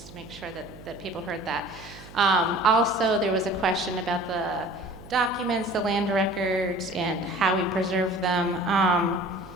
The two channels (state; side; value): noise; right; hum, 18 dB below the sound